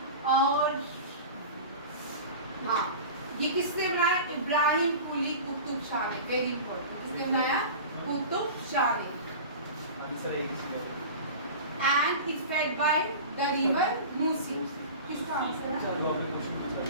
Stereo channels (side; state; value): both; inverted; correlation -0.34